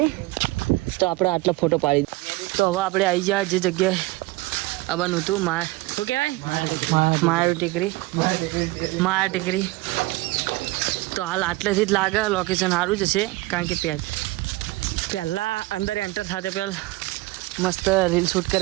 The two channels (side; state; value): left; quieter; 20.9 dB